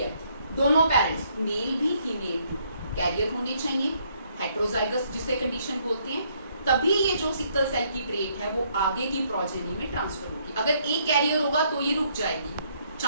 दोनों पेरेंट्स, मेल भी फीमेल भी कैरियर होने चाहिए, हेटेरोजाइगस जिसे कंडीशन बोलते हैं, तभी ये जो सिकल सेल की ट्रेट है वो आगे की प्रोजेनी में ट्रांसफर होगी। अगर एक कैरियर होगा तो ये रुक जाएगी,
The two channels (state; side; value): inverted; both; correlation -0.69